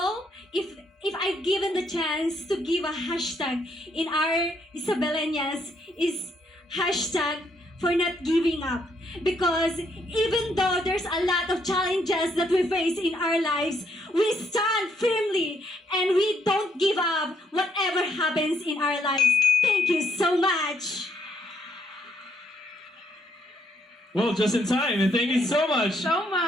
if I've given the chance to give a hashtag in our Isabelenias is hashtag for not giving up. Because even though there's a lot of challenges that we face in our lives, we stand firmly and we don't give up whatever happens in our lives. Thank you so much. Well, just in time, and thank you so much. So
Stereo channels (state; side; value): normal; both; correlation 0.72